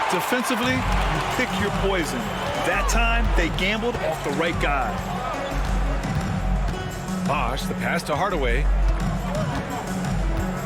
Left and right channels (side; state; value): both; identical; correlation 1.00